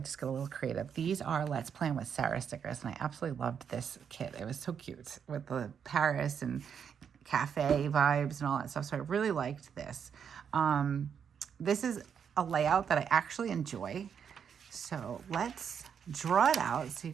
got a little creative. These are Let's Plan with Sarah stickers, and I absolutely loved this kit. It was so cute with the Paris and cafe vibes and all that stuff. So I really liked this. This is a layout that I actually enjoy. So let's draw it out so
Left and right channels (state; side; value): quieter; left; 7.5 dB